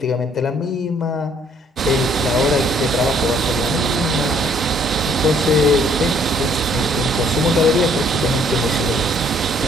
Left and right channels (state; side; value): normal; both; correlation 0.63